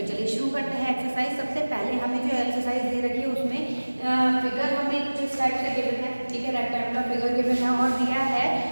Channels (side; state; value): both; inverted; correlation -1.00